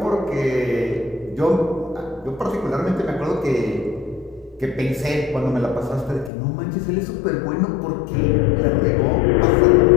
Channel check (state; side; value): drops out; right; at 6.3 s